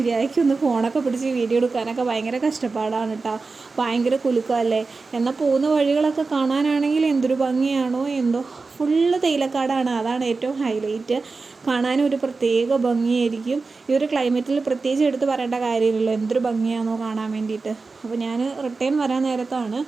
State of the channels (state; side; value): quieter; left; 4.1 dB